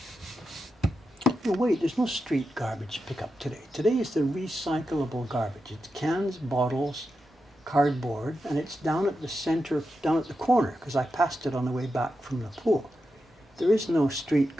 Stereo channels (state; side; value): normal; both; correlation 0.88